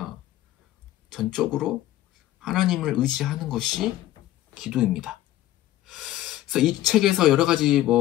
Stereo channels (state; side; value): quieter; right; 14.2 dB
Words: 전적으로 하나님을 의지하는 것이 기도입니다. 그래서 이 책에서 여러 가지